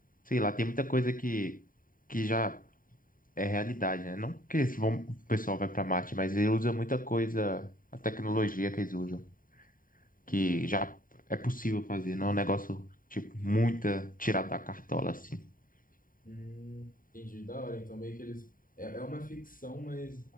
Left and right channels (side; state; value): right; late; 0.40 ms